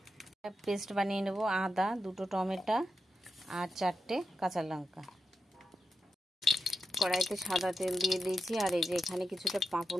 পেস্ট বানিয়ে নেব। আদা, 2টো টমেটো আর 4টে কাঁচা লঙ্কা। কড়াইতে সাদা তেল দিয়ে দিয়েছি। আর এই যে এখানে কিছুটা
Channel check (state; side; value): normal; both; correlation 0.88